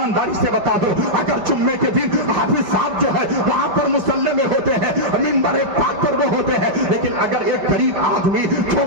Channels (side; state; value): left; late; 5.2 ms